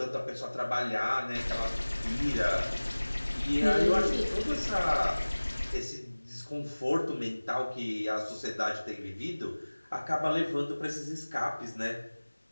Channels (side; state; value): both; inverted; correlation -1.00